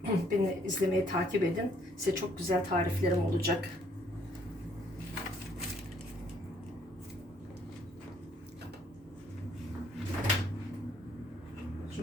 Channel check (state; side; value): normal; both; correlation 0.65